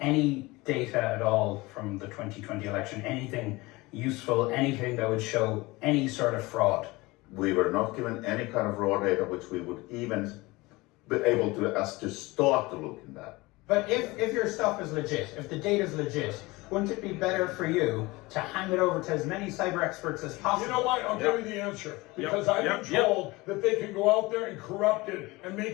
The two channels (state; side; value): quieter; right; 22.1 dB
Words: data at all from the 2020 election? Anything useful, anything that would show any sort of fraud? We were not given any kind of raw data which we would even be able to start to look in that. But if your stuff is legit, if the data is legit, wouldn't it be better for you to hand it over to as many cyber experts as possible? You know what? I'll give you the answer. Because I've been told that they can go out there and corrupt it and